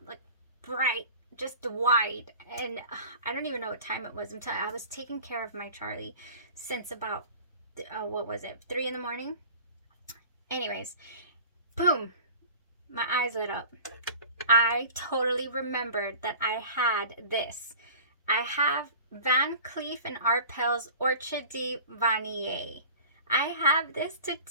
like bright, just wide, and I don't even know what time it was. I was taking care of my Charlie since about what was it, 3 in the morning. Anyways, boom, my eyes lit up. I totally remembered that I had this. I have Van Cleef and Arpels Orchidee Vanille. I have this to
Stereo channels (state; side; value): inverted; both; correlation -0.43